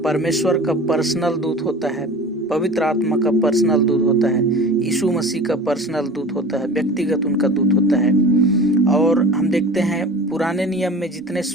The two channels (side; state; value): both; normal; correlation 0.38